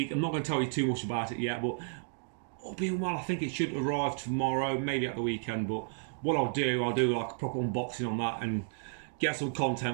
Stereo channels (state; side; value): silent; left; digital silence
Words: I'm not going to tell you too much about it yet, but all being well, I think it should arrive tomorrow, maybe at the weekend. But what I'll do like a proper unboxing on that and get some